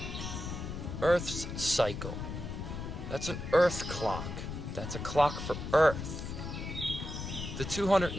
cycle. That's an Earth clock. That's a clock for Earth. The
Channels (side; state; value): left; noise; rumble, 6 dB below the sound